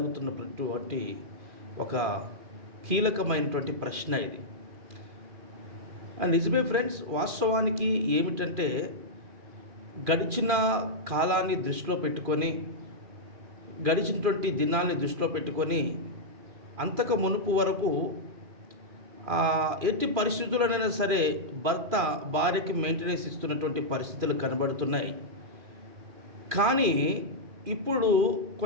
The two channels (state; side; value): late; left; 2.4 ms